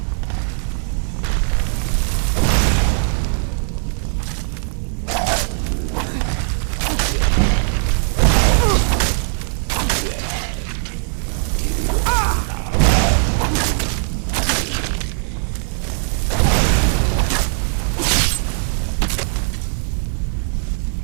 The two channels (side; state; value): left; silent; digital silence